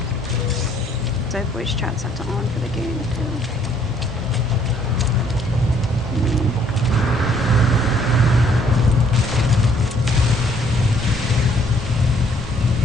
Because I have voice chat set to on for the game, too.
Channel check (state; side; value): normal; both; correlation 0.63